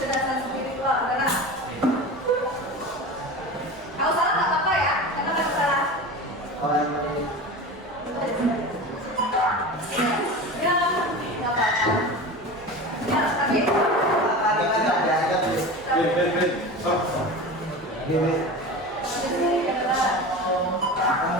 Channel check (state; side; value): normal; both; correlation 0.30